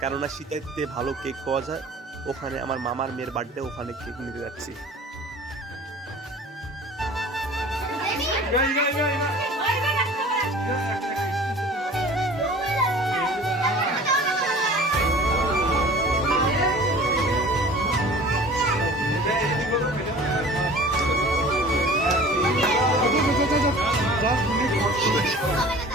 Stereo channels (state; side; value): normal; both; correlation 0.44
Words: কেননা সীতাইতে ভালো কেক পাওয়া যায়। ওখানে আমার মামার মেয়ের বার্থডে, ওখানে কেক নিতে যাচ্ছি।